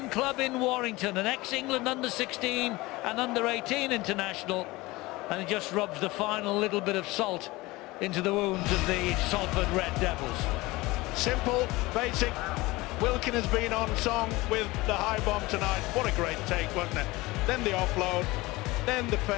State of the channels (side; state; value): right; quieter; 20.9 dB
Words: club in Warrington, an ex-England under-16 and under-18 international. And it just rubs the final little bit of salt into the wounds of the Salford Red Devils. Simple, basic. Wilkin has been on song with the high bomb tonight. What a great take, wasn't it? Then the offload, then the